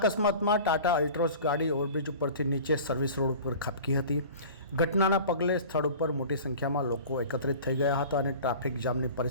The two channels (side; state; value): both; inverted; correlation -0.39